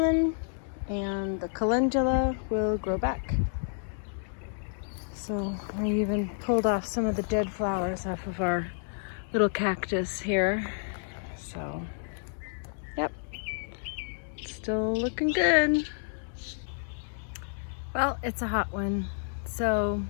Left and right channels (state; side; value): silent; right; digital silence